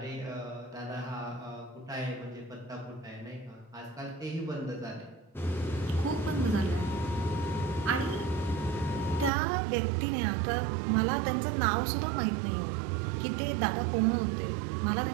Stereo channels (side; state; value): left; drops out; at 9.3 s